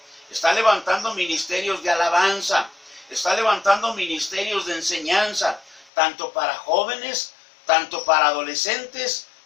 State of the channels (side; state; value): right; drops out; at 5.9 s